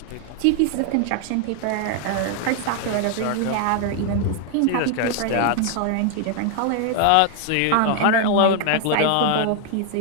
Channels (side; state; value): both; different; correlation 0.00